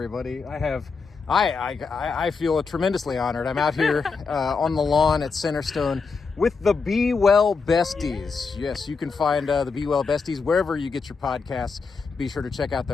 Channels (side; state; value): right; quieter; 4.8 dB